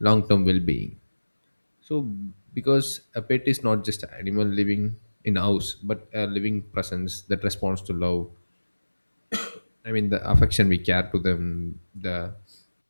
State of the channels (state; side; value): inverted; both; correlation -1.00